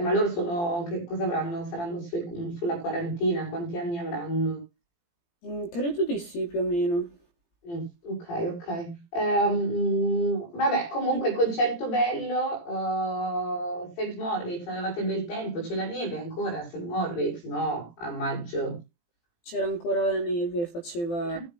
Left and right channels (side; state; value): right; late; 18 ms